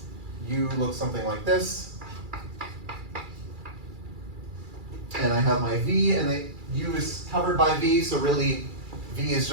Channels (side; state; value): left; late; 2.3 ms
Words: U looks something like this. And I have my V, and the U is covered by V, so really V is